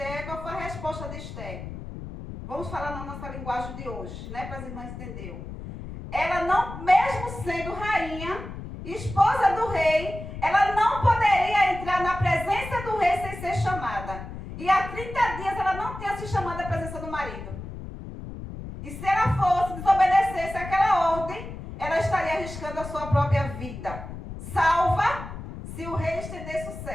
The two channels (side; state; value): left; noise; rumble, 10 dB below the sound